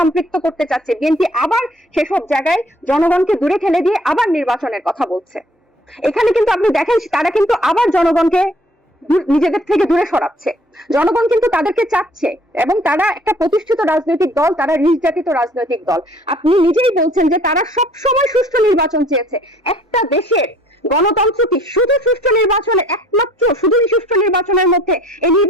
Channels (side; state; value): both; normal; correlation 0.56